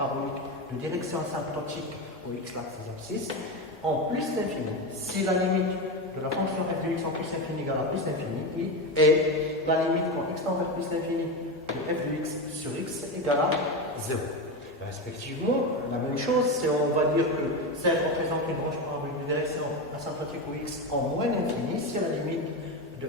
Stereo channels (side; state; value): both; normal; correlation 0.17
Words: de direction asymptotique au x, l'axe des abscisses, en plus l'infini. Si la limite de la fonction f de x en plus infini égale à plus l'infini, et la limite quand x tend vers plus l'infini de f de x sur x égale à 0. Respectivement, la même chose, c'est on va dire que CF représente une branche parabolique de direction asymptotique au x en moins l'infini, si la limite de